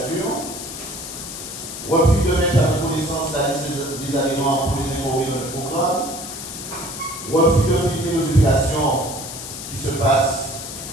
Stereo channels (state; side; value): noise; left; hiss, 9 dB below the sound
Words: refus de mettre à notre connaissance la liste des adhérents pour les informer de notre programme, refus de filmer nos obligations qui se passent